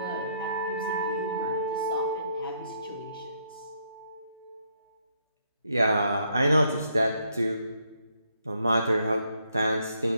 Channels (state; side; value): inverted; both; correlation -0.73